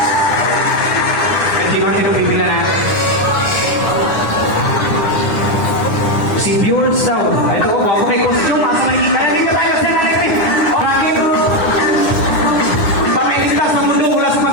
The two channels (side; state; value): right; late; 9.8 ms